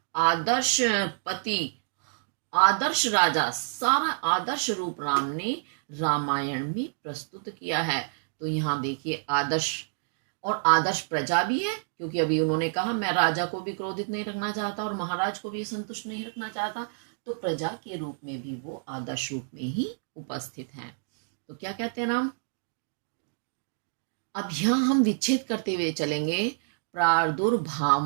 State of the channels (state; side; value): silent; left; digital silence